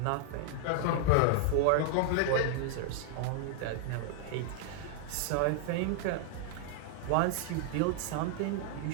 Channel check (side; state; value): both; different; correlation 0.00